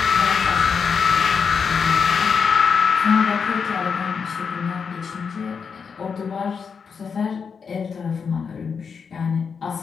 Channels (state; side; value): quieter; right; 6.0 dB